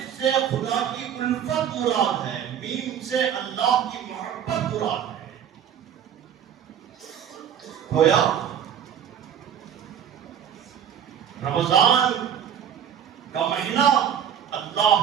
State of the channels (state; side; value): quieter; left; 9.0 dB